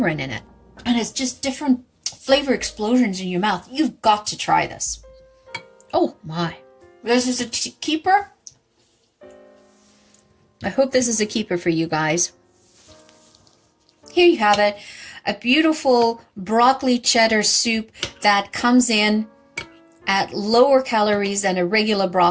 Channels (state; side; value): identical; both; correlation 1.00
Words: in it, and it's just different flavor explosions in your mouth. You've got to try this. Oh my, this is a keeper. I hope this is a keeper for you guys. Here you have it, a beautiful broccoli cheddar soup that comes in at lower calories than a regular